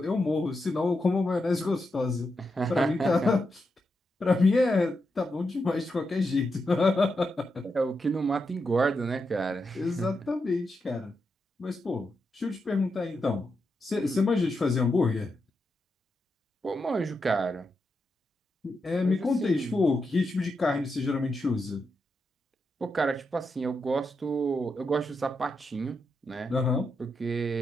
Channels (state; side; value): normal; both; correlation 0.85